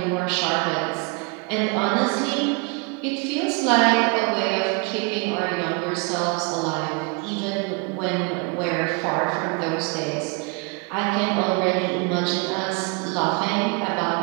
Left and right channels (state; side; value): quieter; left; 31.7 dB